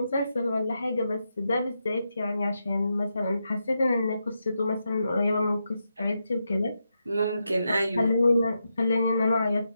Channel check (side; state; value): both; inverted; correlation -0.85